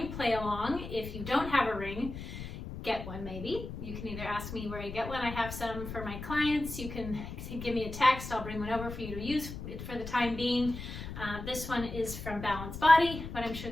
play along. If you don't have a ring, get one maybe. You can either ask me where you get one. I have some for my clients. You can give me a text. I'll bring one over for you to use for the time being. This one is from Balance Body, but I'm sure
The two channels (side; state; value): left; noise; rumble, 9 dB below the sound